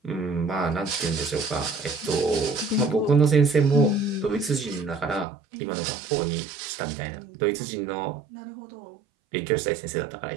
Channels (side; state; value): left; drops out; at 5.2 s